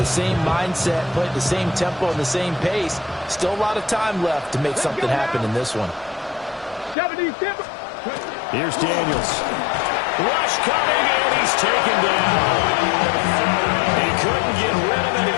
same mindset, play at the same tempo and the same pace. Still a lot of time left to make something happen in this one. Here's Daniels. Rush coming, and he's taken down. He couldn't get rid of it.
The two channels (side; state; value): right; drops out; at 7.0 s